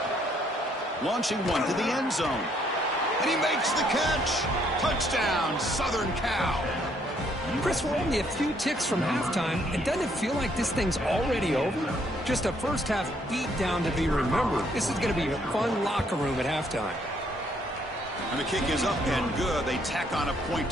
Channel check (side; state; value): both; normal; correlation 0.68